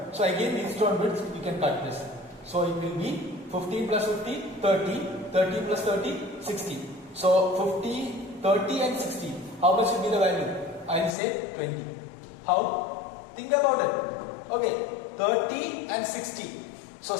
So again Wheatstone bridge, you can cut this. So it will be 15 plus 50, 30, 30 plus 30, 60. So 50, 30 and 60. How much will be the value? I will say 20. How? Think about it. Okay, 30 and 60. So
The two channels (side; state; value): right; drops out; at 11.2 s